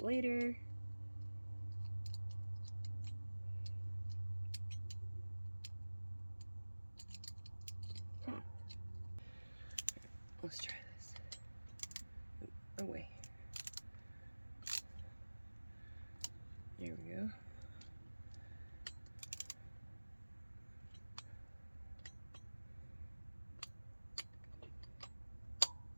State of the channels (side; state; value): both; inverted; correlation -1.00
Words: Let's try this. Oh, wait. There we go.